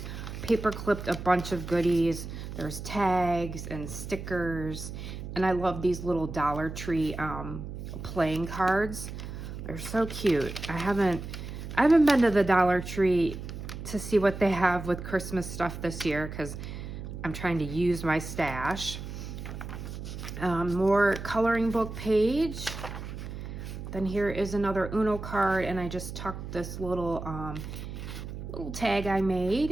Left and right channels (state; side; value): noise; right; hum, 9 dB below the sound